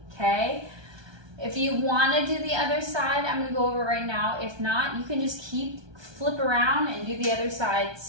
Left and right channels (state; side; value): late; left; 1.2 ms